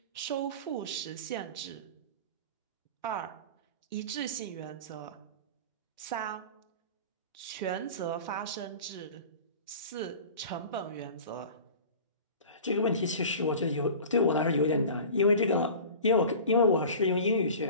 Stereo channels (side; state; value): both; inverted; correlation -0.38